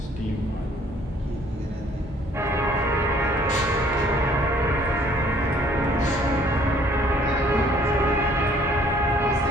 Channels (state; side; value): normal; both; correlation 0.59